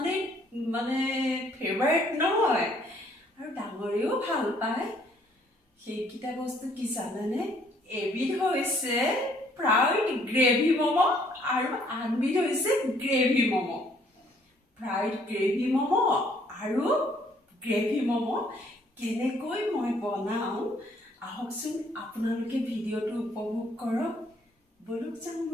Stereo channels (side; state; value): both; normal; correlation 0.63